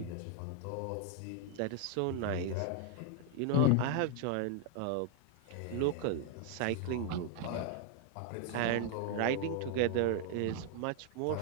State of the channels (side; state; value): both; different; correlation 0.00